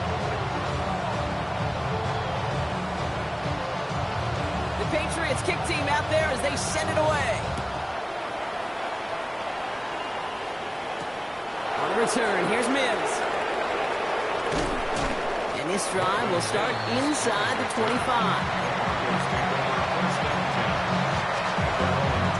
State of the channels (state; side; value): identical; both; correlation 1.00